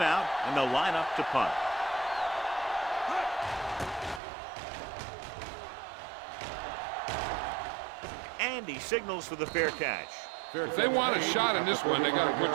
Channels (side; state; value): left; drops out; at 4.2 s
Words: out, and they'll line up to punt. And he signals for the fair catch. If they want a shot in this one, they got to